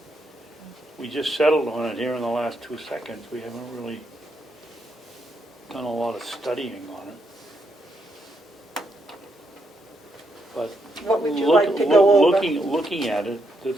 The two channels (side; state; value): both; normal; correlation 0.79